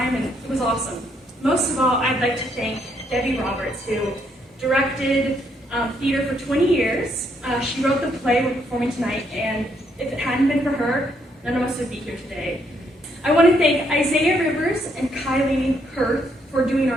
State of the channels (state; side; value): normal; both; correlation 0.73